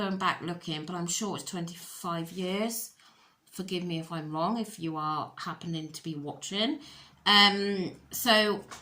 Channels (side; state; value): both; identical; correlation 1.00